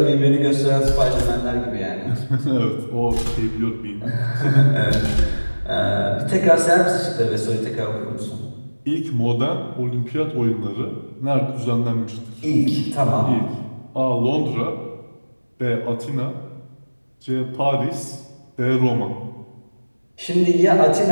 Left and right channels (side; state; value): both; inverted; correlation -1.00